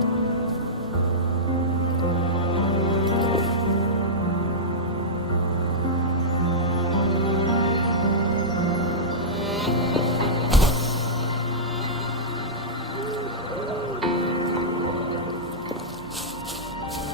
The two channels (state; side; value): normal; both; correlation -0.13